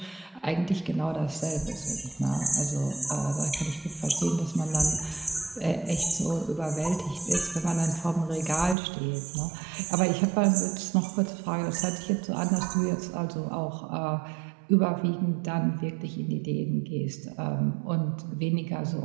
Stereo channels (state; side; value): drops out; left; at 8.8 s